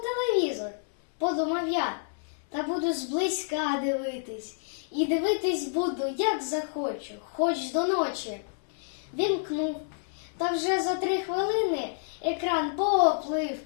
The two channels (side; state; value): right; silent; 58 dB below the other